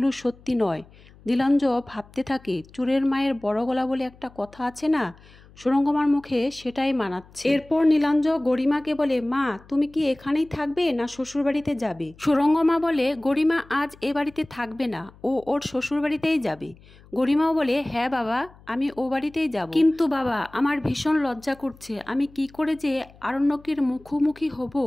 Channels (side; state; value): left; noise; hum, 25 dB below the sound